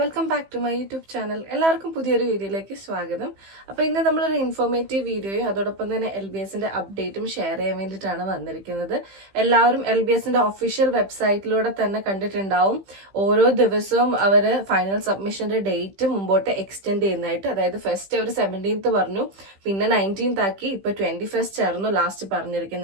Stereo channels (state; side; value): late; left; 15 ms